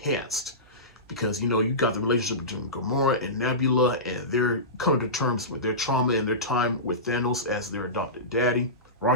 Because, you know, you got the relationship between Gamora and Nebula, and they're coming to terms with their trauma and their time with Thanos as their adopted daddy.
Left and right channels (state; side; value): normal; both; correlation -0.20